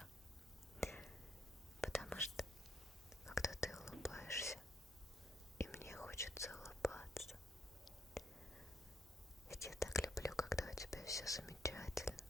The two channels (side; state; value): both; normal; correlation 0.73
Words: Потому что, когда ты улыбаешься, и мне хочется улыбаться. Ведь я так люблю, когда у тебя все замечательно.